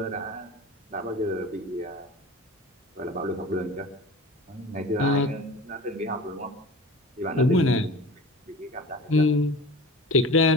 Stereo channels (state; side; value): normal; both; correlation 0.36